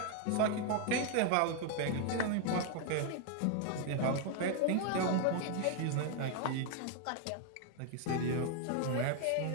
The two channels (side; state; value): both; different; correlation 0.00